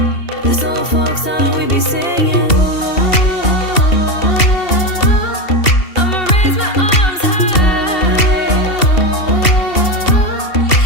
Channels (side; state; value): right; late; 2.7 ms